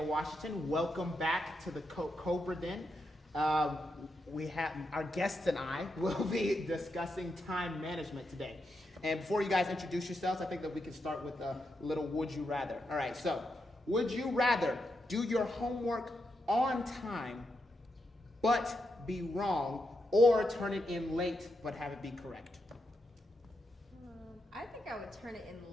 Washington. Welcome back to the Cobra Den. We have our guests and I will be discussing time management today. And before you guys introduce yourselves, I think that we can start with a little would you rather. All right, so would you rather do your homework on time but be wrong, or turn it in late but have it be correct? I think I would turn it in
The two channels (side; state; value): both; normal; correlation 0.84